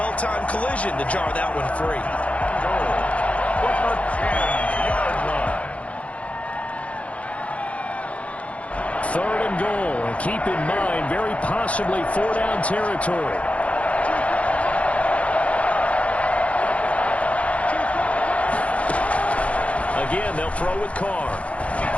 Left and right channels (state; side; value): late; right; 0.064 ms